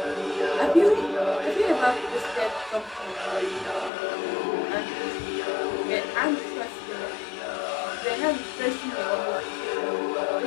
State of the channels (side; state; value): right; drops out; at 3.9 s